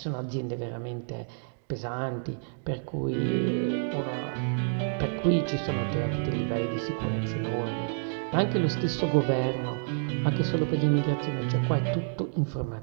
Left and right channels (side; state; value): left; silent; digital silence